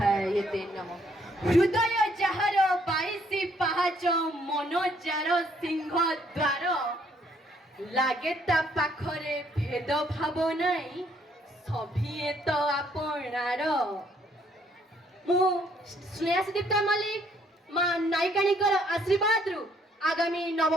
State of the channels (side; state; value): both; normal; correlation 0.67